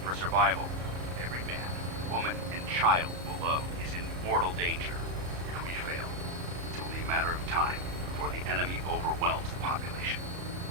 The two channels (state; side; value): late; left; 34 ms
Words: for survival. Every man, woman, and child below is in mortal danger. If we fail, it's only a matter of time before the enemy overwhelms the population.